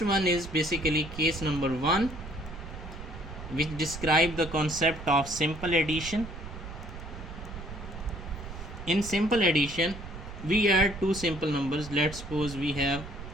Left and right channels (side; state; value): right; noise; rumble, 12 dB below the sound